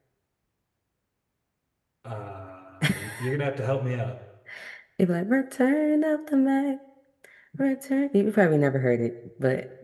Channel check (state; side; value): identical; both; correlation 1.00